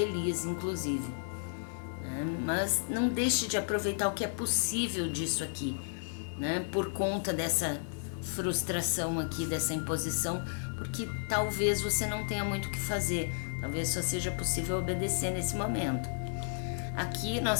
inclusive. Mas não deixe de aproveitar o que é possível disso aqui, né? Por conta dessa frustração aqui, dessa imposição, porque talvez você não tenha muito o que fazer, talvez só seja possível obedecer nesse momento. Aqui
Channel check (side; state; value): right; silent; 56 dB below the other